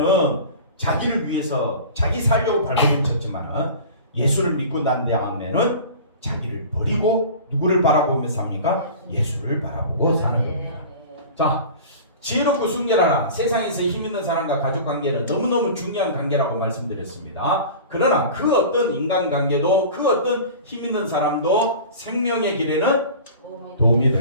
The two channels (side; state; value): both; inverted; correlation -0.38